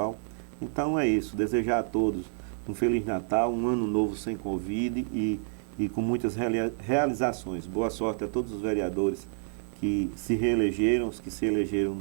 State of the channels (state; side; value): silent; left; 59 dB below the other